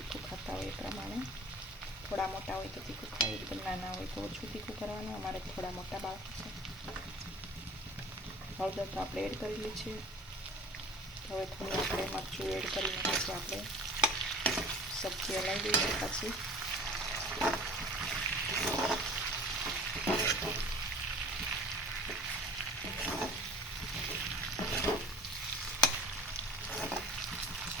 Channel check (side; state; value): both; normal; correlation 0.44